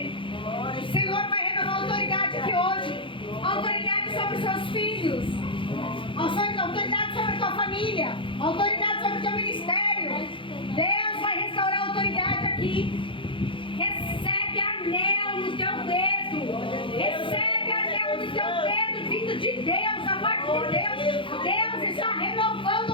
o Senhor vai renovar autoridade aqui hoje. Autoridade sobre os seus filhos, autoridade sobre a tua família, autoridade sobre o teu ministério. Deus vai restaurar a autoridade aqui. Recebe anel no teu dedo. Recebe anel no teu dedo, vindo de Deus, da parte de Deus. Deus está renovando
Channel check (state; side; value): late; right; 0.25 ms